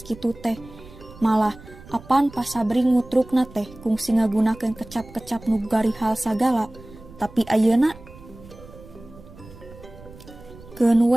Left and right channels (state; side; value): noise; right; rumble, 20 dB below the sound